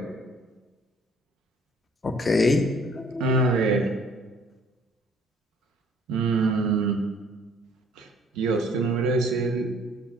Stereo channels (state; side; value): normal; both; correlation 0.58